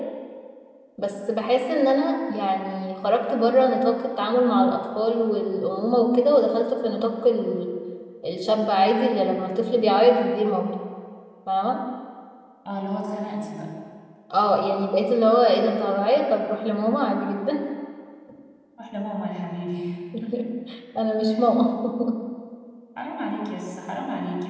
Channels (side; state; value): both; identical; correlation 1.00